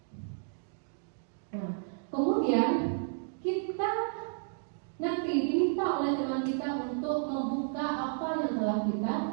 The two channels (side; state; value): left; silent; digital silence